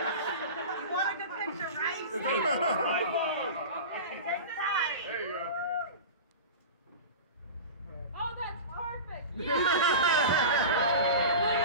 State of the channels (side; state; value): both; inverted; correlation -0.30